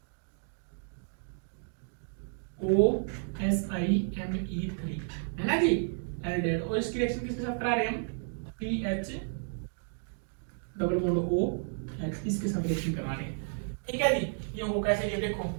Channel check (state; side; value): silent; left; digital silence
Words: OSiMe3 है ना जी, एल्डिहाइड, और इसकी रिएक्शन किसके साथ करा रहे हैं हम, PH double bond O H, इसके साथ रिएक्शन करा रहे हैं। ठीक है जी, ये हो कैसे, ये देखो,